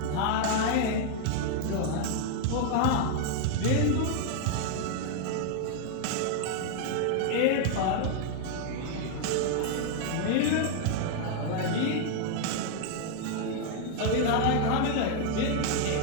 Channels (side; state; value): both; different; correlation 0.00